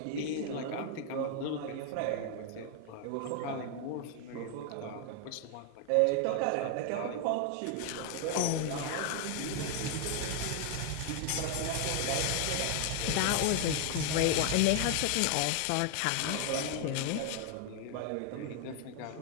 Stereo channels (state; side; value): different; both; correlation 0.00